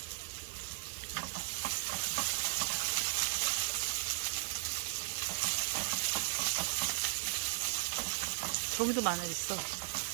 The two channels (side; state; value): left; silent; 54 dB below the other